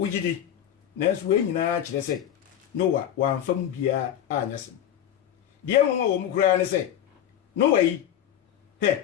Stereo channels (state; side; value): quieter; right; 10.6 dB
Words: nanso we nyinaa kyerɛ sɛ Noa wamfa mu bia anyasem deɛ wɔn a wɔn kura ne sɛ Noa yi